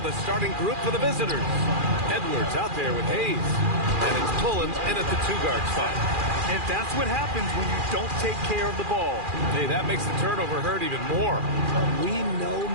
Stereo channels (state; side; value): late; left; 2.4 ms